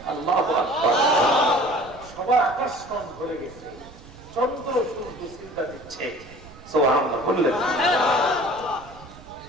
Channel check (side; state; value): right; noise; rumble, 20 dB below the sound